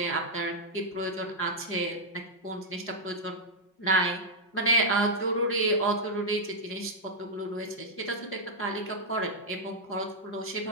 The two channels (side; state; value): right; late; 5.4 ms